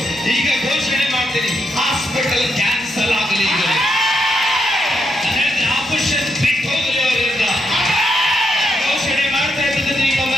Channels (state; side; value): normal; both; correlation 0.80